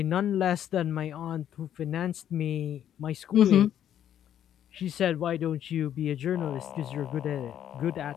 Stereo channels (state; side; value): quieter; right; 10.3 dB